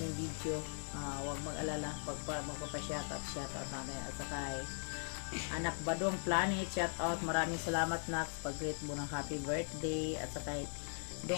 video. Huwag mag-alala pag magpapa-shout out na. At saka Anak Badong Planet, shout out. Maraming salamat na pag-greet mo ng happy birthday. At saka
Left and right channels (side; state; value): right; silent; digital silence